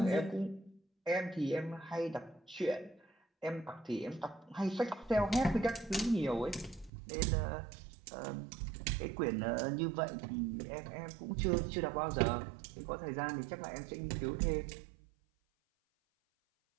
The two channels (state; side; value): drops out; left; at 6.9 s